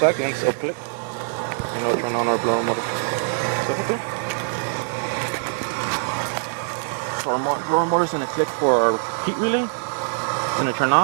it'll click, and it'll turn on our blower motor. So our blower motor is going to click for our heat relay. It's going to turn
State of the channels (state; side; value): silent; left; 63 dB below the other